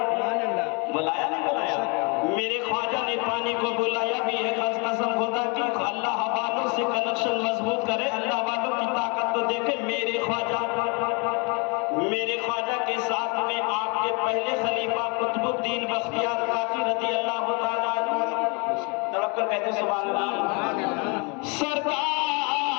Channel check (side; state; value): right; quieter; 32.0 dB